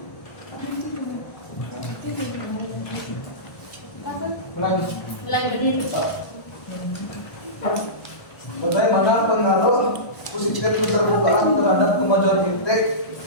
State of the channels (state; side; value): late; right; 1.2 ms